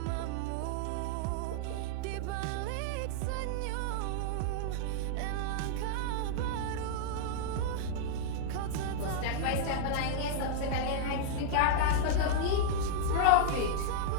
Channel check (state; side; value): different; both; correlation -0.01